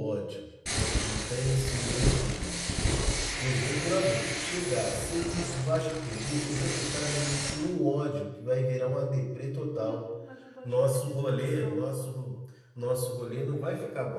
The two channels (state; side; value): identical; both; correlation 1.00